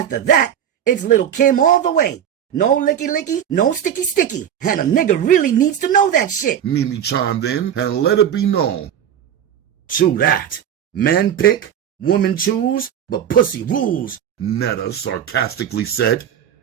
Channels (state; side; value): quieter; left; 9.5 dB